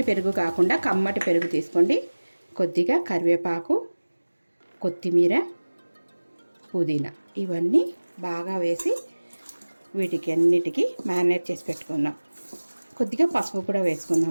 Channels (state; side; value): inverted; both; correlation -1.00